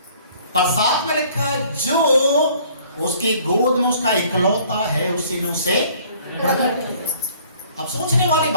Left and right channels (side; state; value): both; inverted; correlation -0.56